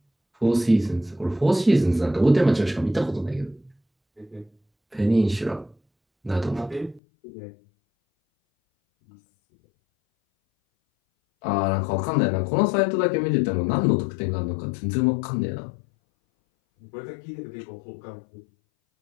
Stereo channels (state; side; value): drops out; right; at 7.0 s